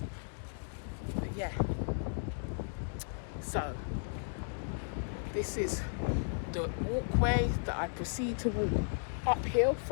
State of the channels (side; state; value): right; silent; digital silence